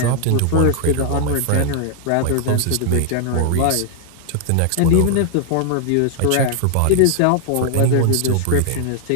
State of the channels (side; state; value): both; different; correlation 0.00